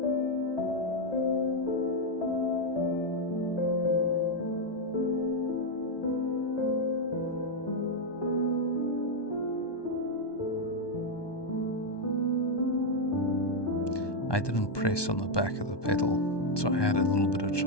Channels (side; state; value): right; late; 1.2 ms